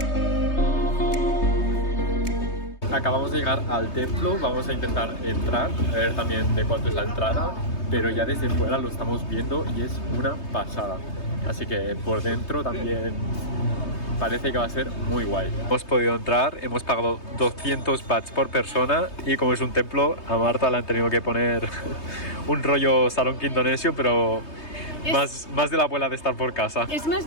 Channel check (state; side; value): late; right; 3.2 ms